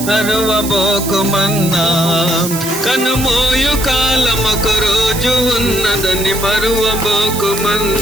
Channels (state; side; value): noise; right; hiss, 7 dB below the sound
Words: మరువబోకుమన్నా, కనుమూయ కాలమొక రోజు ఉన్నదని